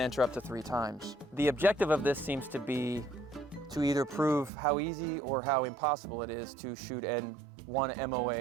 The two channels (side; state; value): left; drops out; at 4.5 s